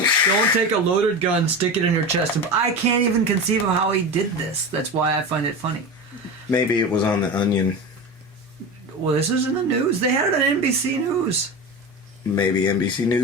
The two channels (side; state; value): both; normal; correlation 0.26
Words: take a loaded gun, stick it in your chest. I can't even conceive of how he did this. That's why I find it funny. Maybe it was on The Onion. Well, this is in the news. They had it on NBC News. Maybe NBC